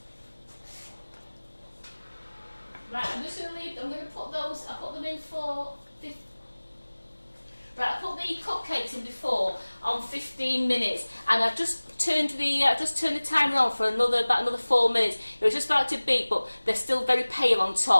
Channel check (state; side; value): inverted; both; correlation -1.00